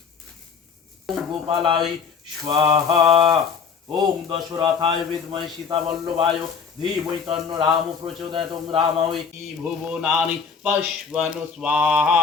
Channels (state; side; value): quieter; right; 6.0 dB